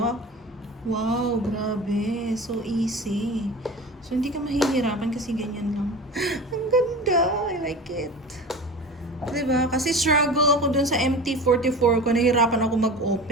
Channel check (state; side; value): normal; both; correlation 0.34